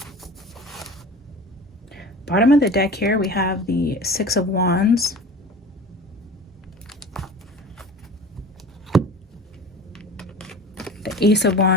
Bottom of the deck here, we have the Six of Wands. The Ace of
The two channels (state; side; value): normal; both; correlation 0.38